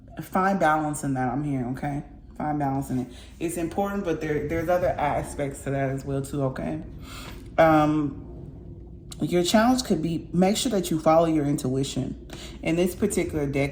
find balance in that, I'm hearing, okay? Find balance in it. It's important, but there's other aspects to that as well, too, okay? Your challenge could be, make sure that you follow your intuition. In this particular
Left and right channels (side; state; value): both; identical; correlation 1.00